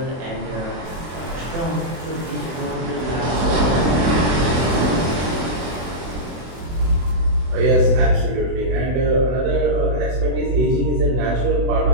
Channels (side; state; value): left; late; 24 ms